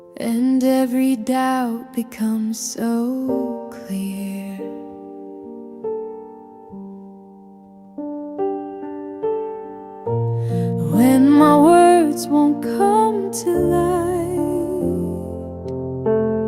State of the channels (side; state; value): both; identical; correlation 1.00